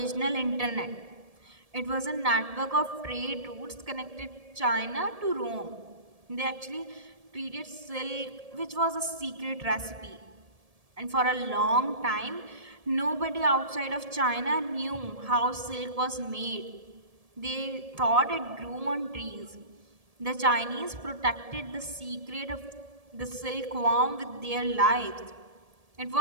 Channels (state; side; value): late; left; 1.7 ms